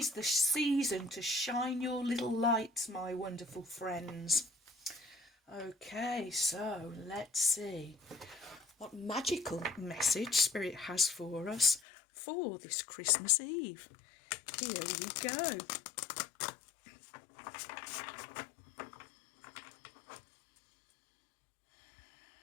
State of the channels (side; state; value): right; drops out; at 11.8 s